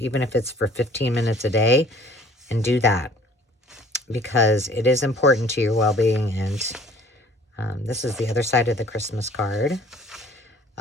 if it's for 15 minutes a day, and do that, because it is important to your well-being. And this is the other side of the Christmas card.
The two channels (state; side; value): normal; both; correlation 0.52